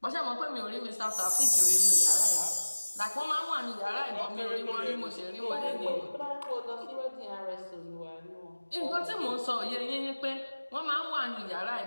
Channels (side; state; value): both; inverted; correlation -1.00